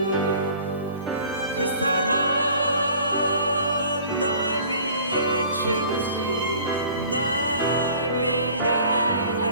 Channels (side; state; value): both; inverted; correlation -0.49